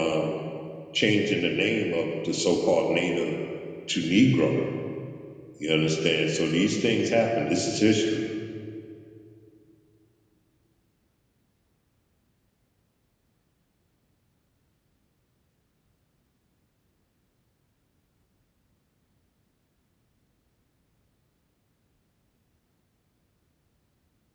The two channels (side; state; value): both; identical; correlation 1.00